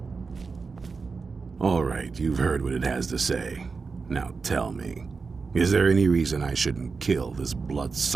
All right, you've heard what it has to say. Now tell me, is there any reason I shouldn't kill this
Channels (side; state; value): left; quieter; 4.7 dB